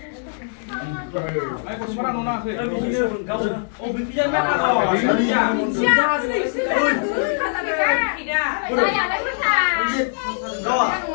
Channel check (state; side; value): silent; right; digital silence